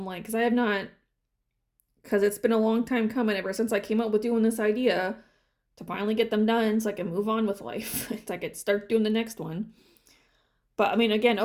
like, because I have not, because it's been a long time coming ever since I came up with doing this idea to finally get them done so I can move on with life. So I could start doing the next one. But I mean, again,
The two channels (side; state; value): both; identical; correlation 1.00